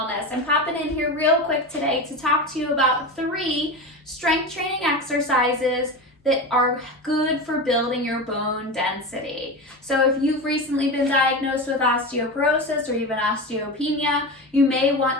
I'm popping in here real quick today to talk to you about 3 strength training exercises that are good for building your bone density. So if you've recently been diagnosed with osteoporosis or even osteopenia, you may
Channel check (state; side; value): normal; both; correlation 0.24